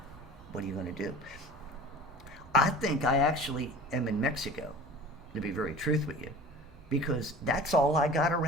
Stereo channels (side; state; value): both; normal; correlation 0.40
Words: what are you going to do? I think I actually am in Mexico, to be very truth with you, because that's all I got